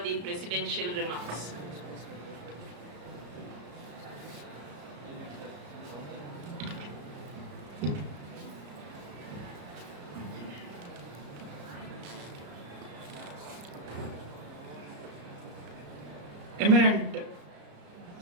the presidential remarks. Eminent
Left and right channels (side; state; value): left; late; 34 ms